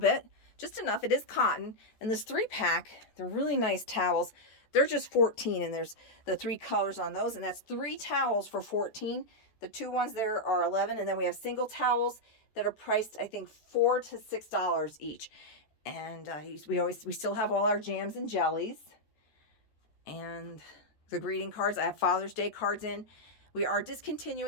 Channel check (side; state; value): right; late; 14 ms